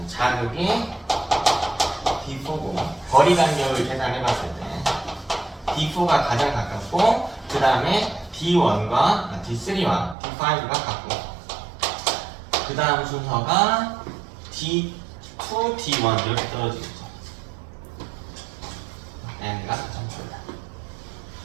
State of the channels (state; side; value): drops out; left; at 10.2 s